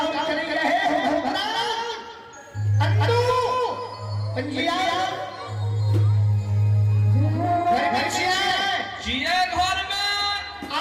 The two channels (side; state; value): both; identical; correlation 1.00